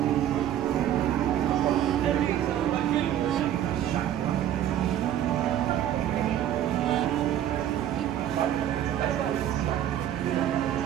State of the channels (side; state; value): left; quieter; 11.1 dB